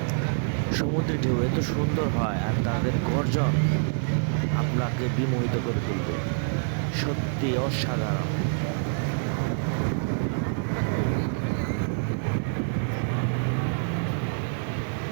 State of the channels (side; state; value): left; silent; 61 dB below the other